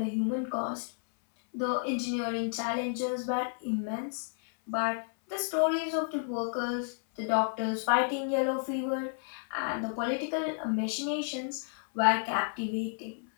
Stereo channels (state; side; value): silent; right; 57 dB below the other